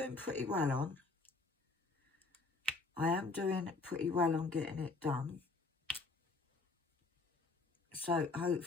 pretty well on. I am doing pretty well on getting it done. So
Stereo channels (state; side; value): quieter; right; 3.7 dB